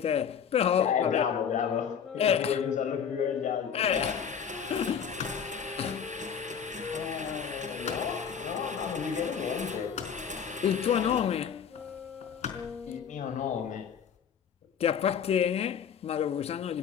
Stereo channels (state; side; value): quieter; right; 7.6 dB